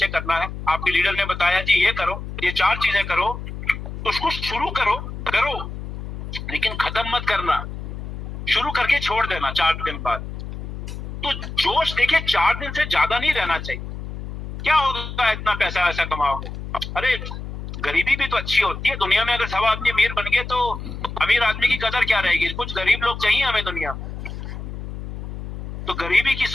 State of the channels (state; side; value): noise; left; hum, 8 dB below the sound